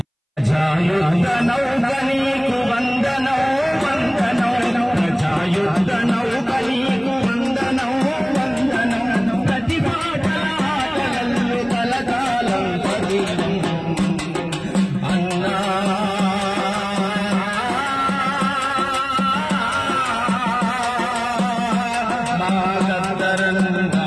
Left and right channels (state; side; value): identical; both; correlation 1.00